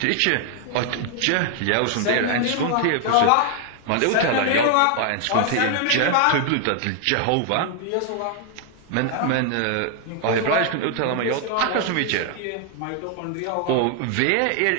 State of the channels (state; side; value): different; both; correlation 0.00